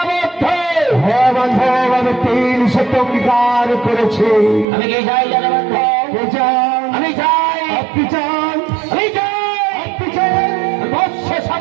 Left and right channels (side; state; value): left; drops out; at 4.7 s